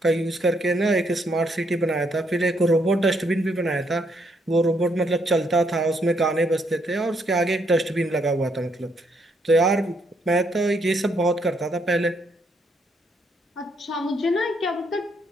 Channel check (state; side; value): normal; both; correlation 0.73